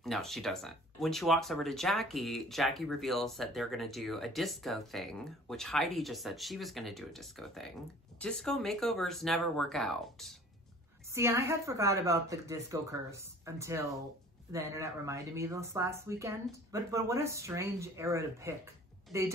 No, she doesn't. When she walks over to Jackie, Jackie reveals that they're going to do a disco thing, which Heidi just said she was going to do a disco thing. Disco makeovers never work out. See, I had forgot about the disco curse until the internet reminded me this last weekend. But what a strange era to pick. They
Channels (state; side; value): normal; both; correlation 0.49